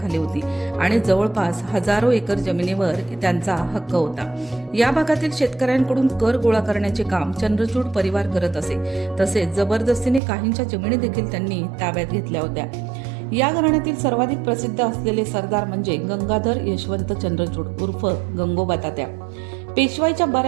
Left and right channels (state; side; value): drops out; left; at 10.2 s